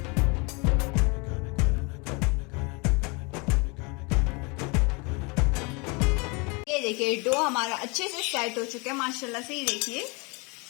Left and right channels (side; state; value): right; quieter; 30.0 dB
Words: देखिए डो हमारा अच्छे से सेट हो चुका है माशाल्लाह से। ये देखिए